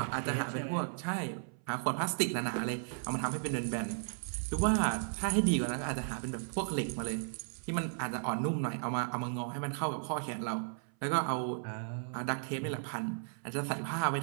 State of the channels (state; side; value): silent; left; 54 dB below the other